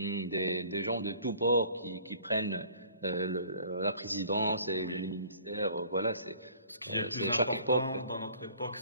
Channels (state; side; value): inverted; both; correlation -0.53